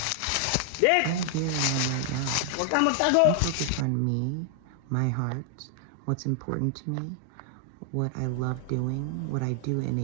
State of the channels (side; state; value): both; different; correlation 0.00